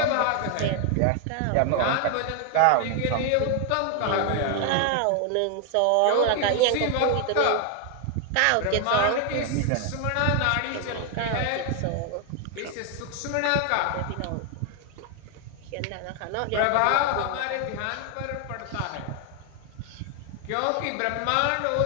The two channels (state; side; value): different; both; correlation 0.00